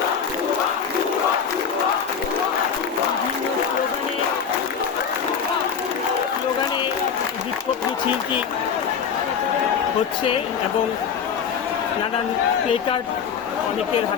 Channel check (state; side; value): quieter; right; 7.0 dB